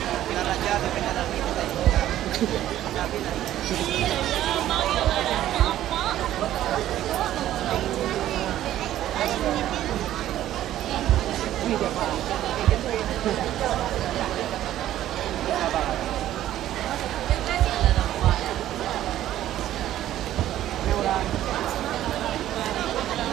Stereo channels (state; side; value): quieter; left; 12.9 dB